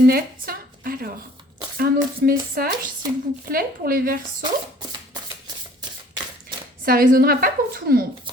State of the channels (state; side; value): normal; both; correlation 0.54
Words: Alors, un autre message, s'il vous plaît, pour les Verseaux. Ça ne résonnera pas pour tout le monde,